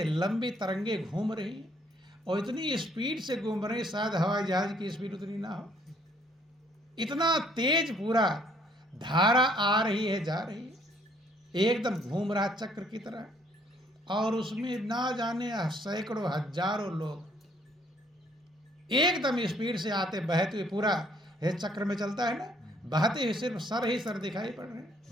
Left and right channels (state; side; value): normal; both; correlation 0.64